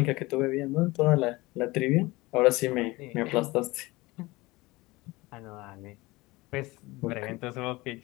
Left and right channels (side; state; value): right; quieter; 21.5 dB